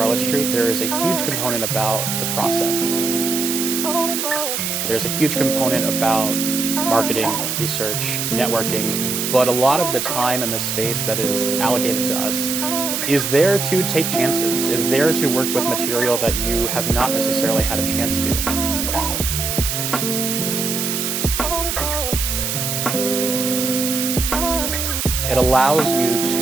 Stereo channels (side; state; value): right; noise; hiss, 1 dB below the sound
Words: Street, there is a huge component about the process. There's a huge component about marketing, research, networking, but a lot of the time and the space that is allocated to us is there to take chances, is there to work with material that you have not necessarily had a chance to. It allows you